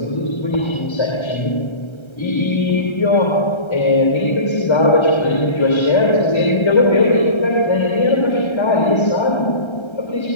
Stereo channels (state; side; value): late; right; 1.3 ms